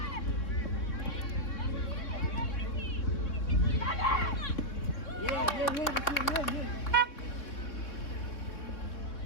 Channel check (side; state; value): right; late; 3.6 ms